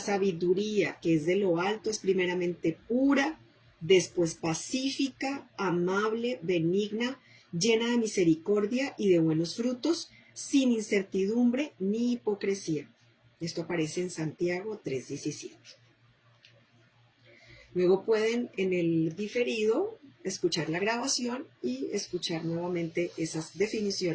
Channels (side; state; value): both; identical; correlation 1.00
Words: que es de lo alto, es primeramente pura, después pacífica, amable, benigna, llena de misericordia y de buenos frutos, sin incertidumbre ni hipocresía. Esto aparece en Santiago 3:17. Luego pueden en el diferido escuchar la grabación y escuchar nuevamente esas